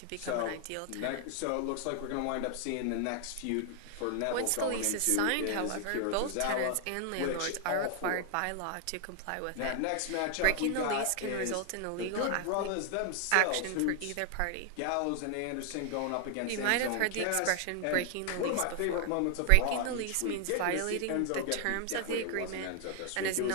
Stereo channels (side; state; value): both; different; correlation 0.00